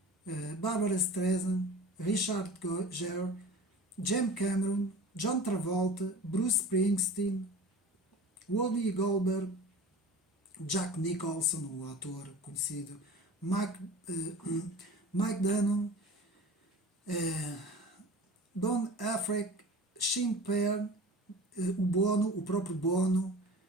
Barbara Streisand, Richard Gere, James Cameron, John Travolta, Bruce Springsteen, Whoopi Goldberg, Jack Nicholson, o ator conhecido, Mike Dunham, Don Affleck, Sean Penn, o próprio Bono,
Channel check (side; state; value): both; normal; correlation 0.38